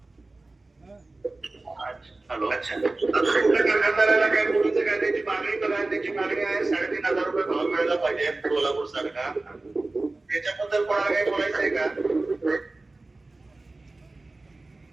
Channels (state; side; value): quieter; left; 3.2 dB